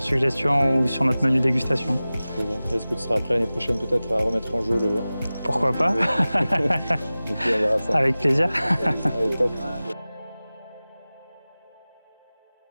ou sur notre menu dégustation. Est-ce que tu seras prêt l'année prochaine peut-être à remettre en jeu le... Pourquoi pas. Et puis on verra ça. Avec plaisir. Allez, top.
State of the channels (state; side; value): inverted; both; correlation -0.97